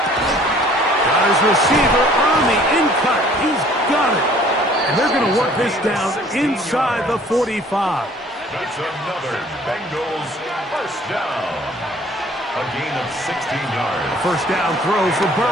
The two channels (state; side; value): normal; both; correlation 0.55